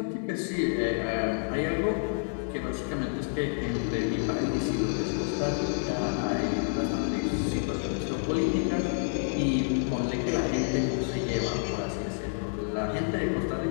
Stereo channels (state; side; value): silent; right; 56 dB below the other